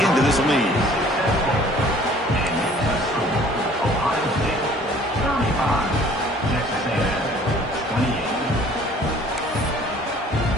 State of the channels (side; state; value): both; normal; correlation 0.54